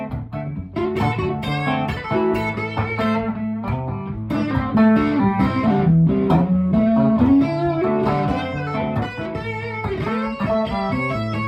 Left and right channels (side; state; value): both; identical; correlation 1.00